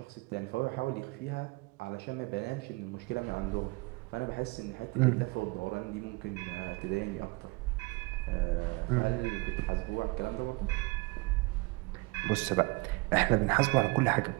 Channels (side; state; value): left; quieter; 25.8 dB